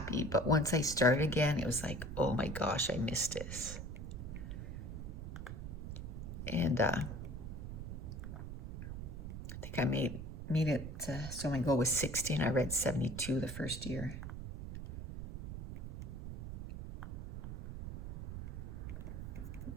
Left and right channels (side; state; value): right; noise; rumble, 7 dB below the sound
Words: But once I started again, it was like, oh my gosh, I missed this. And I think I made it, so my goal was 60 and I read 72 the first year.